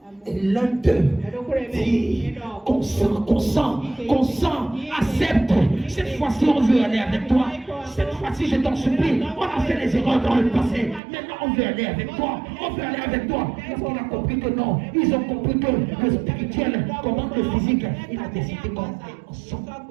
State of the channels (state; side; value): drops out; left; at 11.0 s